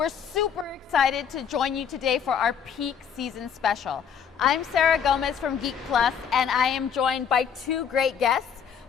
super excited to join you today for our peak season special. I'm Sarah Gomez from Geek Plus, and I am joined by two great guests.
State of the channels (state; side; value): quieter; right; 7.6 dB